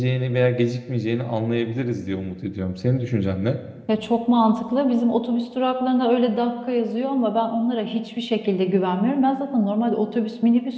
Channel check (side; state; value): both; identical; correlation 1.00